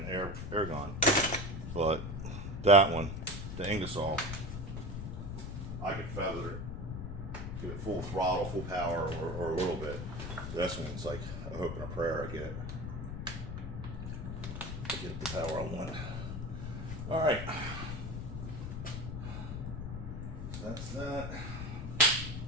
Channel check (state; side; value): noise; left; rumble, 6 dB below the sound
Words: air gun, but that one, the Ingersoll, I could feather it, give it full throttle, full power, or a little bit. This one's like a hope and a prayer I get it. Get the power I want. All right, so that's that.